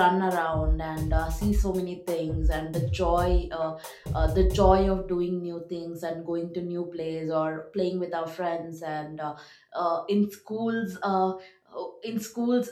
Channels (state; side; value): identical; both; correlation 1.00